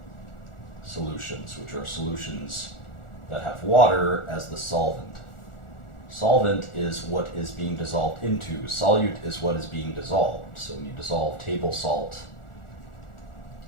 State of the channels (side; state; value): right; late; 1.4 ms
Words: solutions, which are solutions that have water as the solvent. Solvent is what is being dissolved into. Solute is what is being dissolved. So when you dissolve table salt